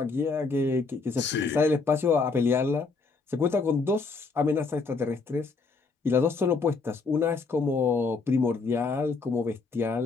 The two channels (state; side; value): quieter; right; 4.3 dB